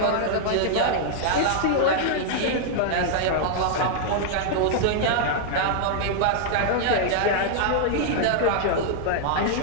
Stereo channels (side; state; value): both; different; correlation -0.01